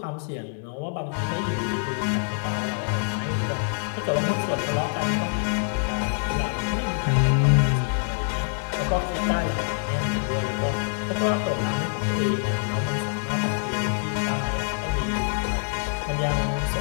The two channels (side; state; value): right; silent; digital silence